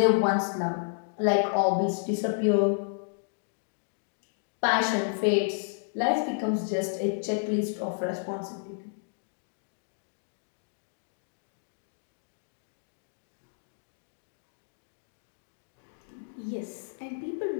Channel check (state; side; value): silent; right; digital silence